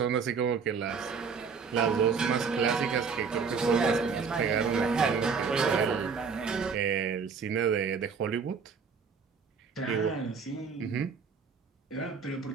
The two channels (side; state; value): left; quieter; 5.7 dB